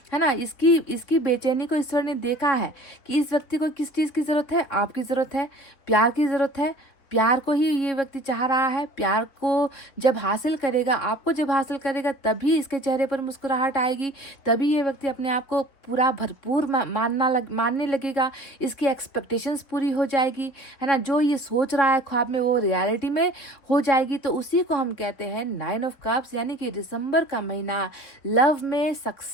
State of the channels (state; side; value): late; right; 4.4 ms